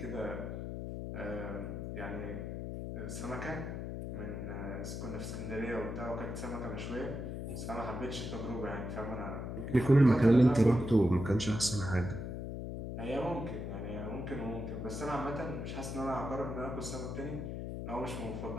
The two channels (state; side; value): noise; left; hum, 5 dB below the sound